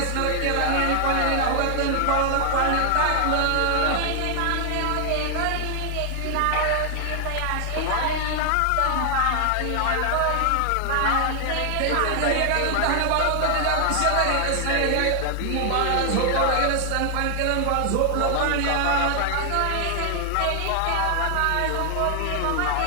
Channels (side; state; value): both; different; correlation 0.00